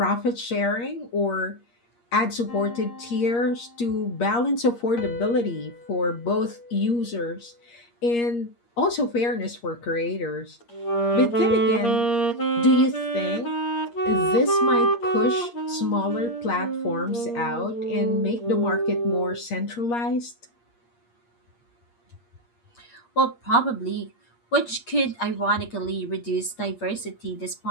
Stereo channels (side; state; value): right; late; 8.5 ms